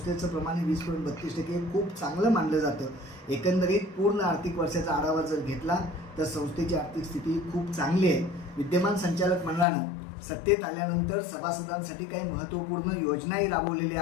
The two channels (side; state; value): right; drops out; at 9.7 s